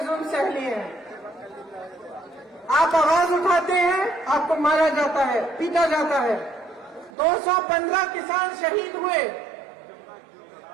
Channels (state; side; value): drops out; left; at 7.1 s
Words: सह लिए हैं। आप आवाज उठाते हैं, आपको मारा जाता है, पीटा जाता है। 215 किसान शहीद हुए।